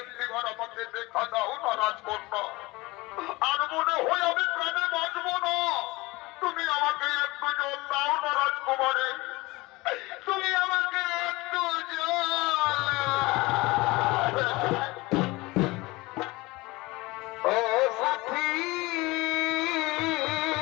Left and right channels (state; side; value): quieter; right; 22.1 dB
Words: আমাকে দেখা দাও না রাজকন্যা আর মনে হয় আমি প্রাণে বাঁচবো না তুমি আমাকে একটু জল দাও না রাজকুমারী তুমি আমাকে একটু জল ও সাথী